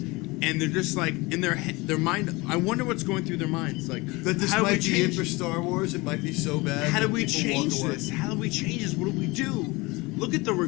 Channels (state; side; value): quieter; right; 23.8 dB